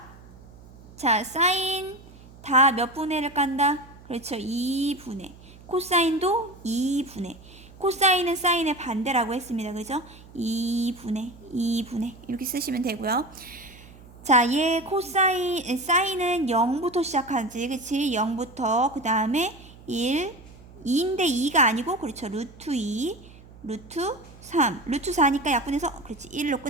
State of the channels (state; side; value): noise; right; hum, 21 dB below the sound